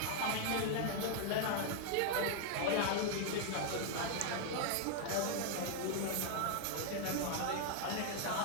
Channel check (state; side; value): different; both; correlation 0.00